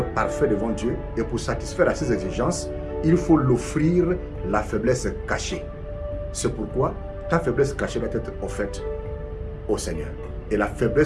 parfait devant Dieu et pour satisfaire à ses exigences, il faut l'offrir la faiblesse cachée. C'est pourquoi ta faiblesse cachée doit être offerte au Seigneur. Et la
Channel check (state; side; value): identical; both; correlation 1.00